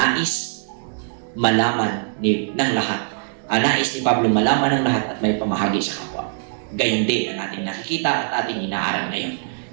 malaman ng lahat. Nais ni Pablo malaman ng lahat at may pamahagi sa kapwa. Gayon din ang ating nakikita at ating inaaral ngayon.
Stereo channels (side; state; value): left; silent; digital silence